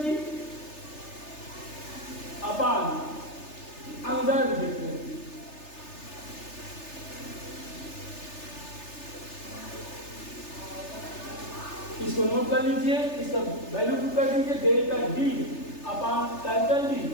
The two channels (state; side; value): late; right; 3.3 ms